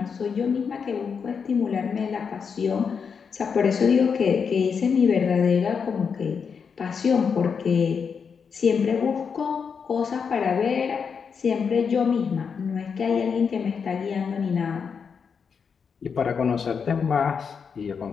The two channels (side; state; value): right; quieter; 6.2 dB